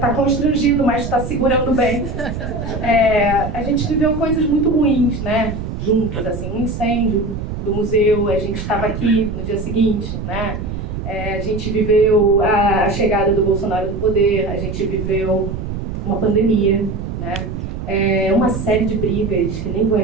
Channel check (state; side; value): noise; right; rumble, 6 dB below the sound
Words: constrangido, mas está segurando bem. A gente viveu coisas muito ruins, né? Juntos, assim, um incêndio do museu, a gente estava aqui no dia seguinte, né? A gente viveu a chegada do Bolsonaro do poder, a gente viveu uma pandemia, né? Uma série de brigas que nem vou